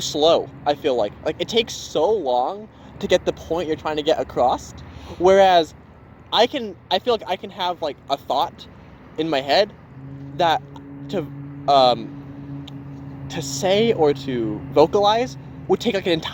I feel like it takes so long to get the point you're trying to get across, whereas I feel like I can have like a thought in my head that to say or to vocalize would take like an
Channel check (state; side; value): identical; both; correlation 1.00